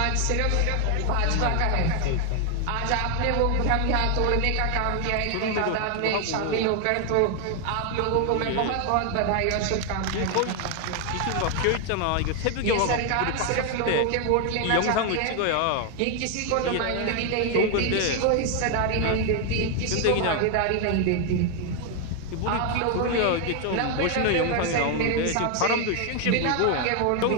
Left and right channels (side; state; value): both; different; correlation 0.01